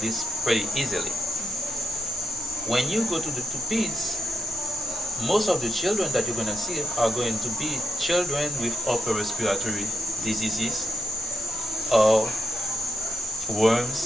pretty easily. When you go to the peds, most of the children that you're going to see are going to be children with upper respiratory diseases or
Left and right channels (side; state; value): left; noise; rumble, 22 dB below the sound